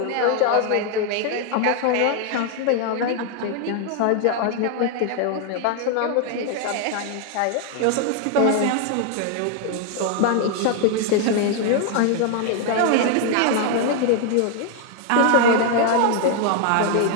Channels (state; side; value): different; both; correlation 0.00